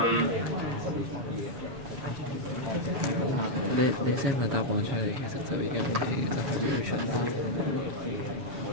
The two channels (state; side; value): late; left; 7.2 ms